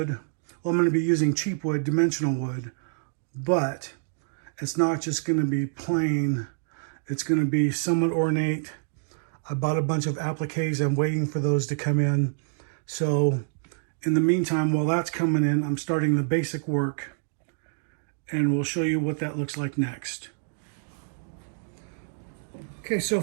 Well, I'm going to be using cheap wood, dimensional wood, but it's not just going to be plain. It's going to be somewhat ornate. I bought a bunch of appliques. I'm waiting for those to come in. So in the meantime, while that's coming in, I'm starting the basic work, and we'll show you what that looks like next. Okay, so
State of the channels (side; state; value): left; silent; digital silence